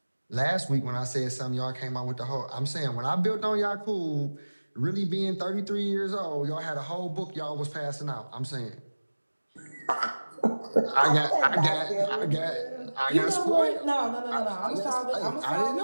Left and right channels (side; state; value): both; inverted; correlation -1.00